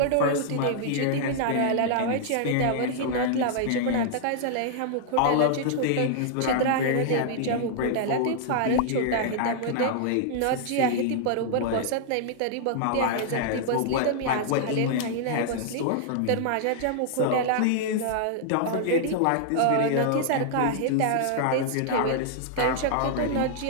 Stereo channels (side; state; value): both; different; correlation -0.01